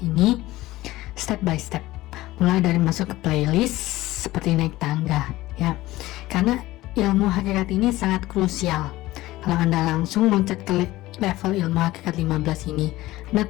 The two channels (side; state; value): right; quieter; 17.4 dB